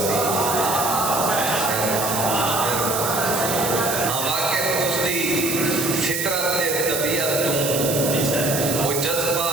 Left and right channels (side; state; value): right; noise; hiss, 2 dB below the sound